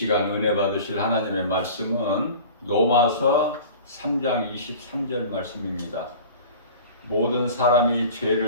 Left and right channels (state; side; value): inverted; both; correlation -0.40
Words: 은혜 받으실 하나님의 말씀은 로마서 3장 23절 말씀입니다. 모든 사람이